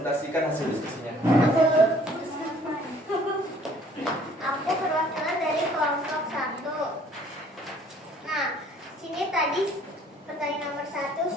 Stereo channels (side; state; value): both; normal; correlation 0.57